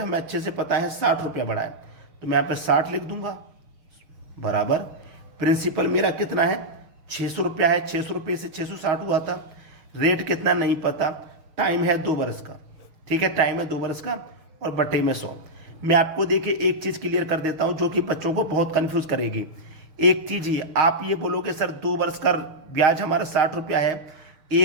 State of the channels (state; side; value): late; left; 6.5 ms